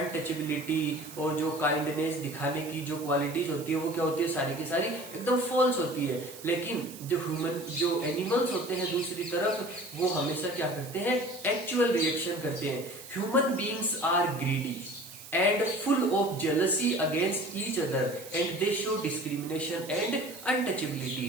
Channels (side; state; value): right; noise; hiss, 15 dB below the sound